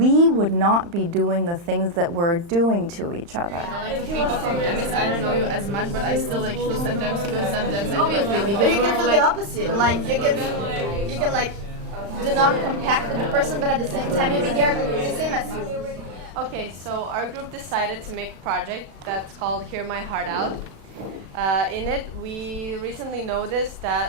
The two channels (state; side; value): late; left; 35 ms